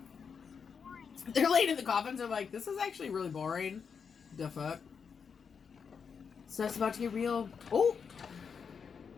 Boring. They're laying in the coffins. They're like, this is actually really boring. The fuck? So that's about to get real. Oh!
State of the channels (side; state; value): right; quieter; 6.3 dB